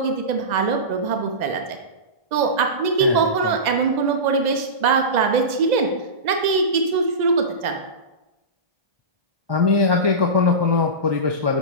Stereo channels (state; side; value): late; left; 2.0 ms